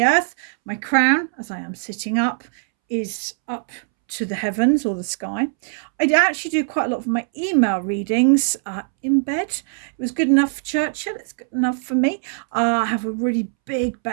earth. My crown, as I am sitting up, is up to the heavens or the sky. I actually do quite a lot of my email readings in bed. It was good enough for Churchill. It's good enough for me. I have a really big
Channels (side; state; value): left; silent; 65 dB below the other